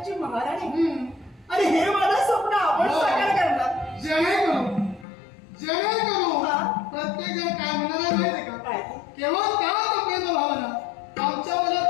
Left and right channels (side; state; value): right; drops out; at 5.1 s